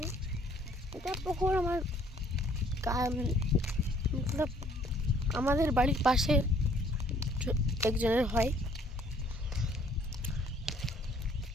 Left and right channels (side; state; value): both; normal; correlation 0.61